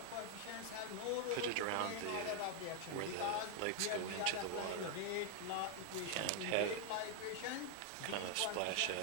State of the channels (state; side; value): different; both; correlation 0.00